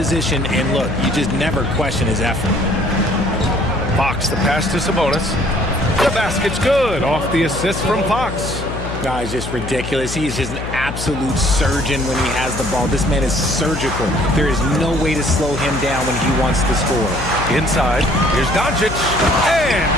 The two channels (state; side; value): noise; left; hum, 7 dB below the sound